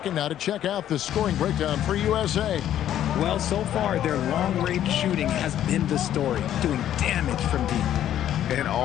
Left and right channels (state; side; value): quieter; right; 11.3 dB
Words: now to check out the scoring breakdown for USA. Well, so far, their long-range shooting has been the story, doing damage from deep. And